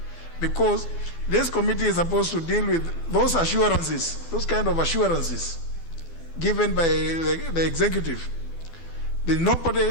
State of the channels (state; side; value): late; right; 12 ms